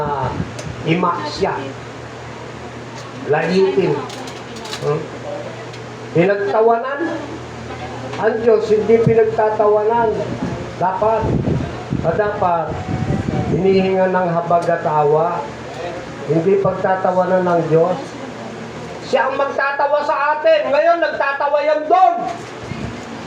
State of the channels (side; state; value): both; identical; correlation 1.00